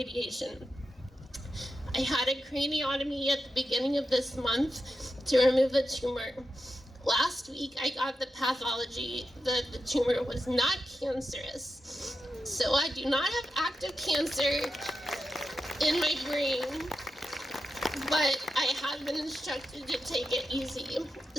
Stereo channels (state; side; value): normal; both; correlation 0.89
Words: I had a craniotomy at the beginning of this month to remove the tumor. Last week, I got the pathology that the tumor was not cancerous. So I do not have active cancer in my brain, but I have been instructed to take it easy.